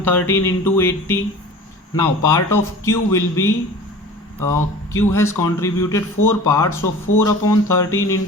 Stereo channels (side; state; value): both; normal; correlation 0.40